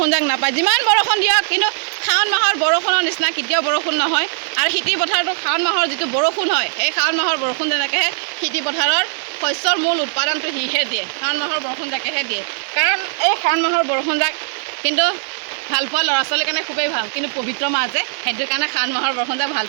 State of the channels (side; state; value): left; silent; digital silence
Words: যাক নাপায়। যিমান বৰষুণ দিয়ক কিন্তু শাওণ মাহৰ বৰষুণৰ নিচিনা কেতিয়াও বৰষুণ নহয়। আৰু খেতি পথাৰটো শাওণ মাহৰ যিটো বৰষুণ হয়, সেই শাওণ মাহৰ বৰষুণ যেনেকৈহে খেতি পথাৰৰ শস্যৰ মূল উৎপাদনটো সিহে দিয়ে, শাওণ মাহৰ বৰষুণ জাকেহে দিয়ে। কাৰণ এই শাওণ মাহৰ বৰষুণ জাক কিন্তু ভাল পোৱা ল'ৰা ছোৱালীৰ কাৰণে খুবেই ভাল, কিন্তু পবিত্ৰ মাহ যে সেইটো কাৰণে শাওণ মাহৰ বৰষুণ জাক ভাল